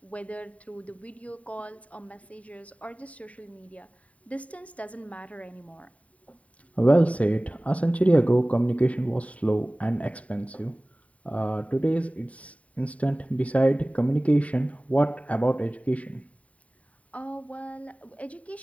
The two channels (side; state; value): right; late; 0.067 ms